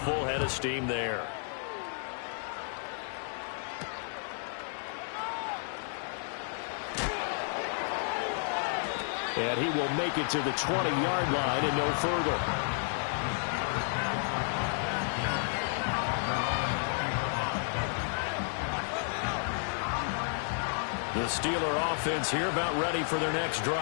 full head of steam there. And he will make it to the 20-yard line and no further. The Steeler offense here about ready for their next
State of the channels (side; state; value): right; silent; digital silence